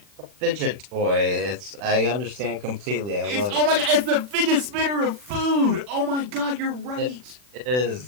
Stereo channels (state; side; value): late; left; 40 ms